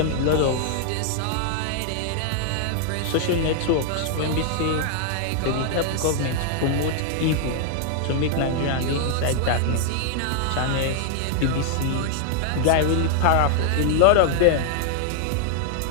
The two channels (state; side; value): different; both; correlation 0.00